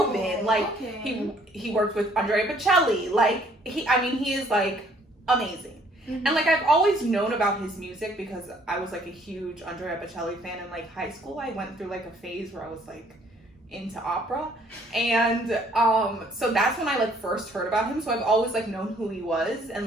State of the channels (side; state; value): both; normal; correlation 0.61